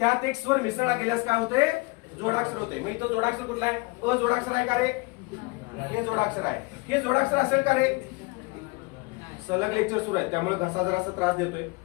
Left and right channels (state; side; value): quieter; right; 26.9 dB